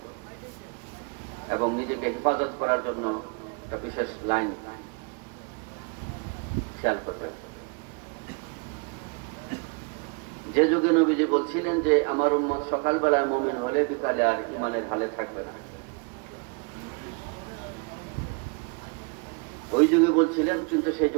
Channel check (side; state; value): left; quieter; 33.1 dB